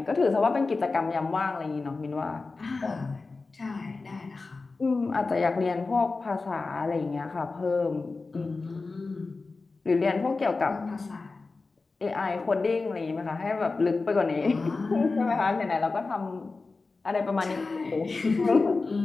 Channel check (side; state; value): right; quieter; 3.8 dB